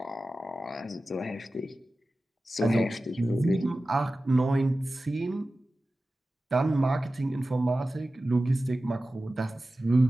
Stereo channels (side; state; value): both; normal; correlation 0.95